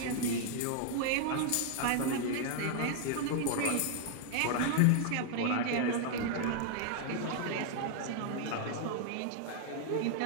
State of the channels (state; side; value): different; both; correlation 0.00